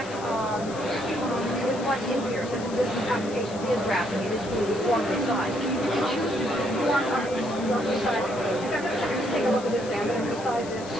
what's in here, such as this application is wrapping, it is being formed and sized. You can choose to form up this resize. In fact, let's take a look at this now. I'm going to resize this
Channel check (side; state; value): left; noise; hiss, 16 dB below the sound